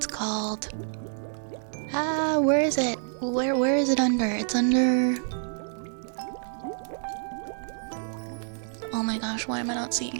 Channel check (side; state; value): left; silent; digital silence